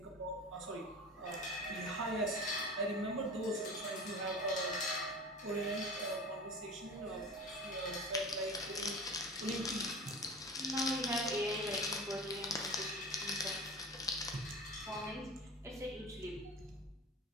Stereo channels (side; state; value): both; normal; correlation 0.34